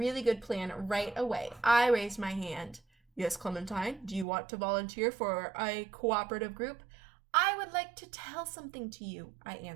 good plan right away. I raised my hand. Yes, Clementine, do you want to volunteer for a cooperative group? I would like to tell something to you, I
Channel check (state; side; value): drops out; left; at 4.2 s